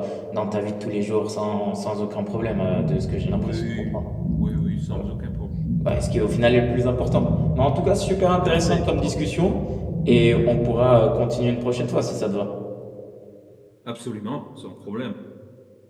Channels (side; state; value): both; identical; correlation 1.00